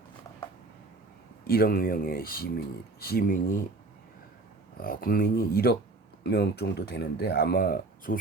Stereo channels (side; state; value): left; quieter; 3.4 dB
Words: 1억 명의 국민이 1억 명 정도 되는데 아마